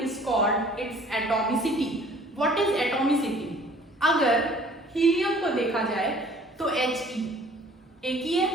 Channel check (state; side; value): normal; both; correlation 0.53